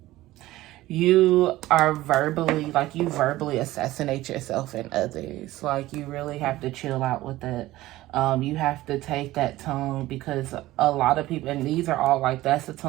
You are you verbally assassinate yourself and others. Like, you really have to chill out with it. You have to take that tongue, because a lot of people, and these are all like, that's a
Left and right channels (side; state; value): left; quieter; 16.7 dB